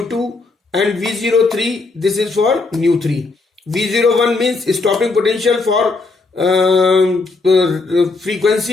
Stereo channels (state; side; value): quieter; right; 3.7 dB